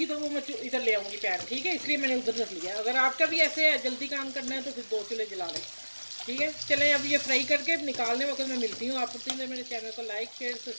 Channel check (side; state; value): both; inverted; correlation -1.00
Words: तो वो मैं इधर ले आऊँगी पैन, ठीक है। इसलिए मैंने उधर रख लिया। अगर आपका भी ऐसे है जल्दी काम करना है तो फिर 2 चूल्हे जला लें, ठीक है। चलें अब ये फ्राई करके निकालने वक्त मैं मिलती हूँ आपको। प्लीज़ मेरे चैनल को लाइक शेयर